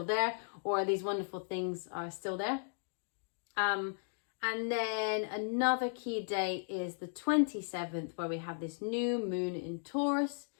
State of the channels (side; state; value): right; silent; digital silence